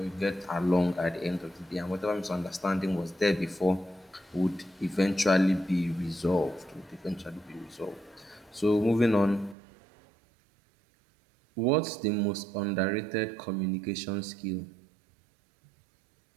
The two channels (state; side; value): drops out; left; at 9.6 s